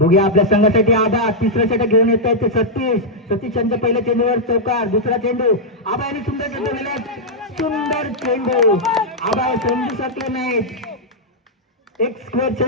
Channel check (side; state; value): both; normal; correlation -0.07